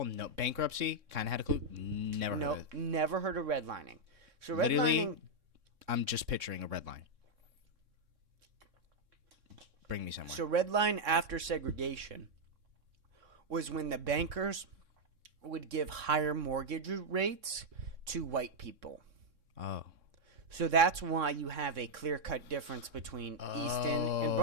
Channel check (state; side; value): late; left; 3.6 ms